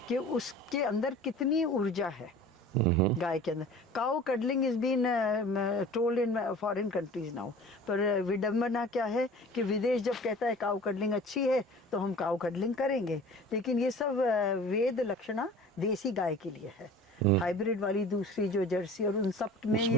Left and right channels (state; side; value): normal; both; correlation 0.43